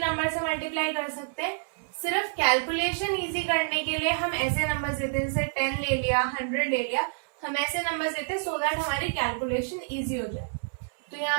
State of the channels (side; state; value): left; silent; 59 dB below the other